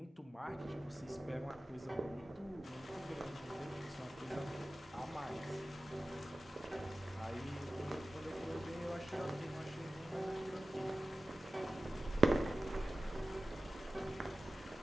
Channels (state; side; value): normal; both; correlation 0.96